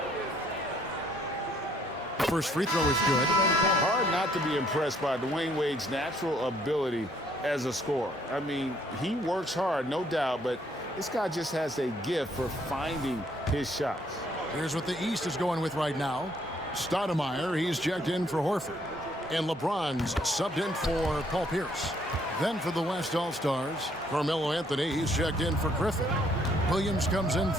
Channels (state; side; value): normal; both; correlation 0.66